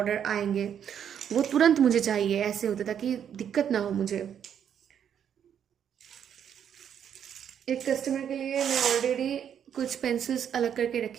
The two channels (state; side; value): quieter; left; 8.8 dB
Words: आएंगे, वो तुरंत मुझे चाहिए ऐसे होता, ताकि दिक्कत ना हो मुझे। एक कस्टमर के लिए मैं ऑलरेडी कुछ पेंसिल्स अलग करके